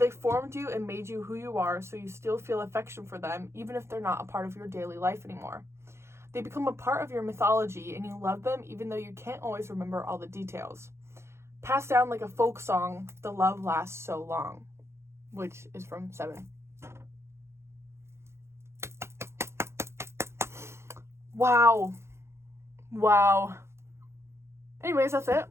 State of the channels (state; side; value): late; left; 0.13 ms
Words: formed you and made you who you are, so you still feel affection for them, even if they're not a part of your daily life anymore. They become a part of your mythology, and you love them even though you can't always remember all the details. Passed down like a folk song, the love lasts so long. Which is from 7. Wow. Anyways, that's it.